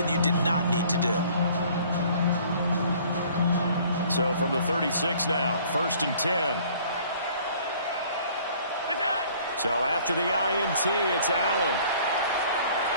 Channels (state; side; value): inverted; both; correlation -0.54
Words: you did not need to do. So from the 36 now, 1st and 10. So after the INT, it's Allen.